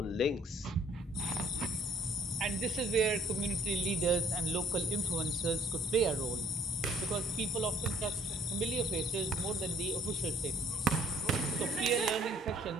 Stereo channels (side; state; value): both; normal; correlation 0.60